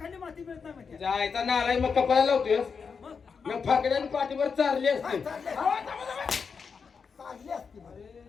माती मिळत नाही माहिती जायचा नालाय मग कपाळाला लावतोय मग फाकड्याने पाठीवर चारली असते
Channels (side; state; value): right; quieter; 5.7 dB